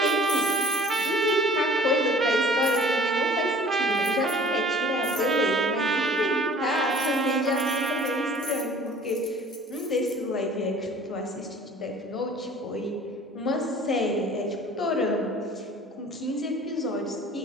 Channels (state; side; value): normal; both; correlation 0.48